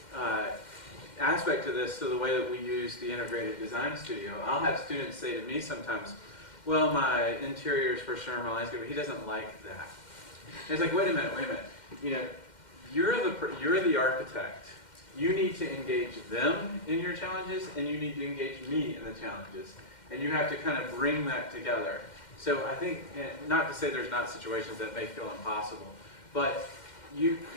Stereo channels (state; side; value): late; right; 2.1 ms